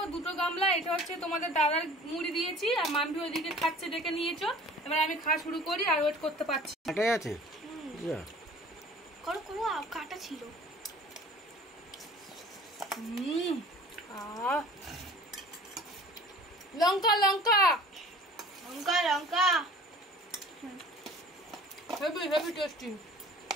2টো গামলা, এটা হচ্ছে তোমাদের দাদার মুড়ি দিয়েছি, আর মাম্পি ওইদিকে খাচ্ছে ডেকে নিয়েছো। এবার আমি খাওয়া শুরু করি, আর ওয়েট করতে পারছি। কাটাই আছে, করো করো, কাটা ছিল। লঙ্কা লঙ্কা লঙ্কা লঙ্কা, হেভি হেভি টেস্টি।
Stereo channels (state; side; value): normal; both; correlation 0.46